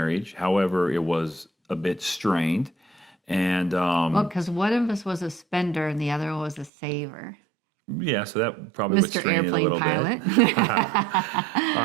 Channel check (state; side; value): drops out; left; at 6.7 s